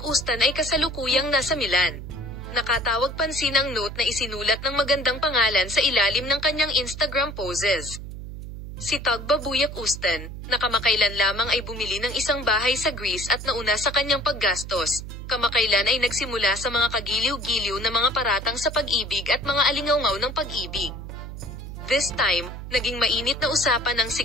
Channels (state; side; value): noise; right; hum, 10 dB below the sound